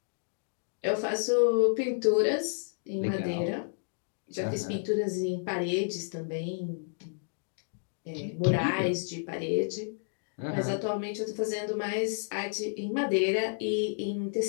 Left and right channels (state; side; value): silent; right; digital silence